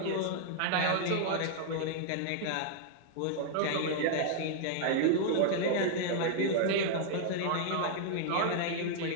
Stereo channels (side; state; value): both; different; correlation -0.01